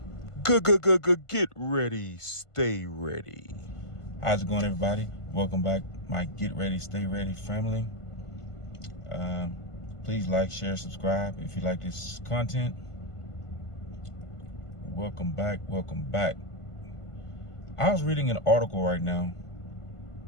Get ready, stay ready. How's it going, everybody? Welcome back, my Get Ready, Stay Ready family. Please like, share, subscribe if you like this content. Welcome back, welcome back. I was reading an article right now,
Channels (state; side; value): late; right; 1.5 ms